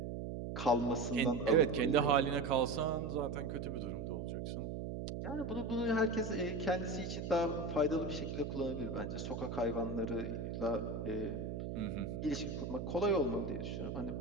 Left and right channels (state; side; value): noise; right; hum, 4 dB below the sound